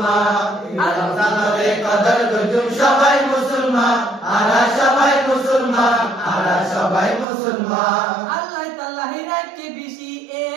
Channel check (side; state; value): left; drops out; at 7.2 s